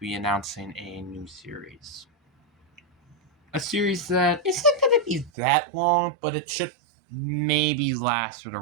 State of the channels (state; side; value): drops out; left; at 5.3 s